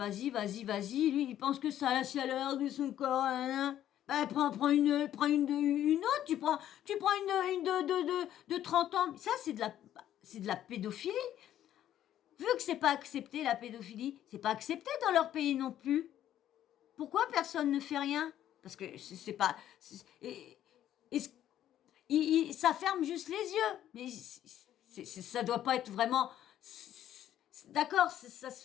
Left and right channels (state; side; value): quieter; right; 11.6 dB